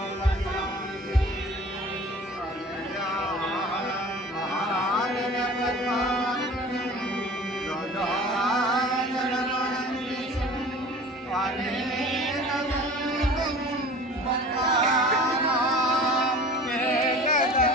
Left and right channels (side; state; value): both; normal; correlation 0.42